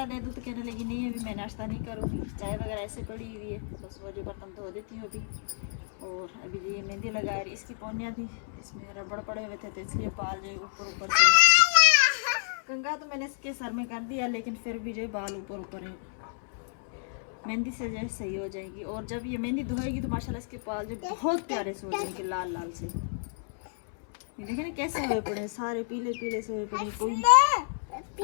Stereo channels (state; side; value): silent; right; 58 dB below the other